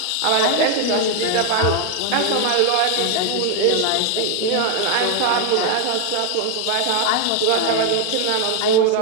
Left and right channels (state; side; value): different; both; correlation 0.01